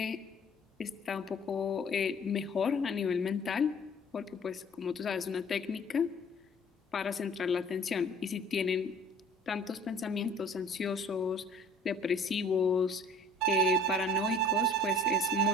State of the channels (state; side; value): normal; both; correlation 0.50